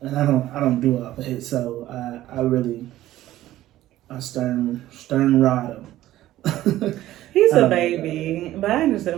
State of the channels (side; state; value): left; quieter; 14.5 dB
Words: I don't do all that, so I stern rod him. He's a baby, but I